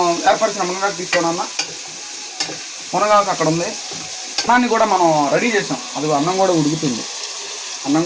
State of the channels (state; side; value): identical; both; correlation 1.00